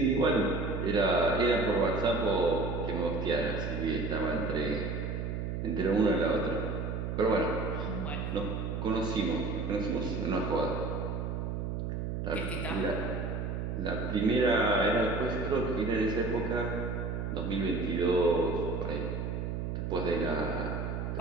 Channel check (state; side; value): noise; right; hum, 3 dB below the sound